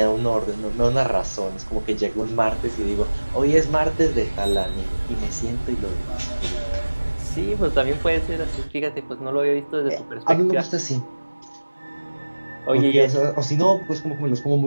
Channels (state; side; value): inverted; both; correlation -1.00